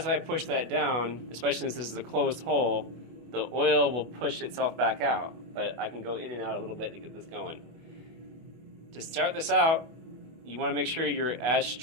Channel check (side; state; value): left; late; 24 ms